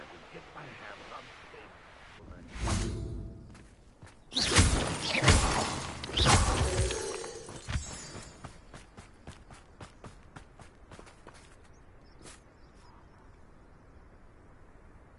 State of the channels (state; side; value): identical; both; correlation 1.00